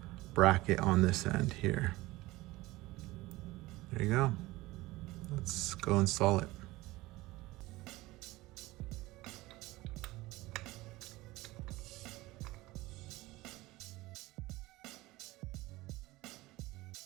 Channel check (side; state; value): left; quieter; 19.6 dB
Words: bracket on this end here. There you go. Let's go install it.